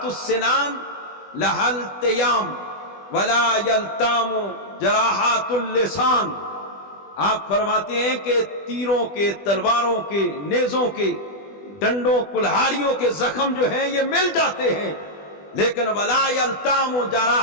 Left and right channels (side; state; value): right; late; 20 ms